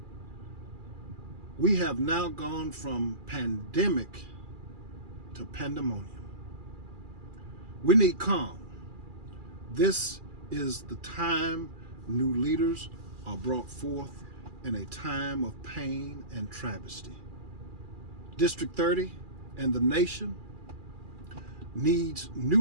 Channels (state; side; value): late; left; 2.4 ms